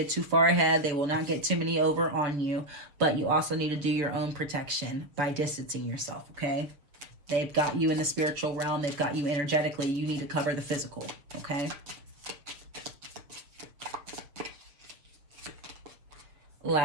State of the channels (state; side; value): late; left; 7.0 ms